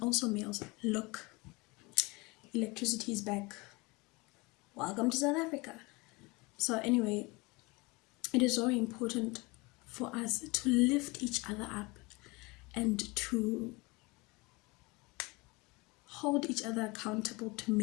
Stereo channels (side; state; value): right; quieter; 25.2 dB